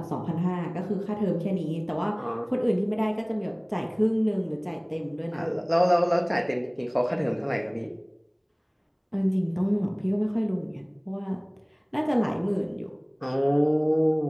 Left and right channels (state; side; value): identical; both; correlation 1.00